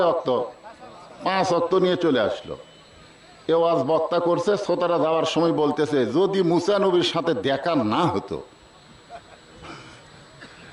ওয়াক্ত? 5 ওয়াক্ত নিয়ে চলে আসলো। এ ওয়াজ বক্তা করছে, শ্রোতারা যাওয়ার সময় বলতেছে যদি মুসা নবীর সাথে দেখা না হতো।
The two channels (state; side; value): identical; both; correlation 1.00